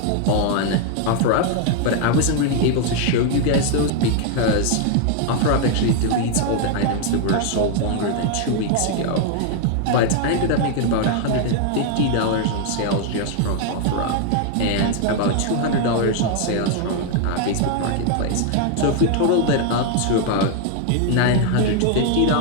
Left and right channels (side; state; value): both; different; correlation 0.00